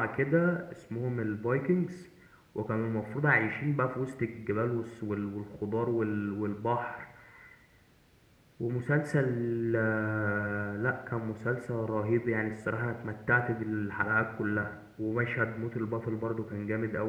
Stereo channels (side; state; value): both; identical; correlation 1.00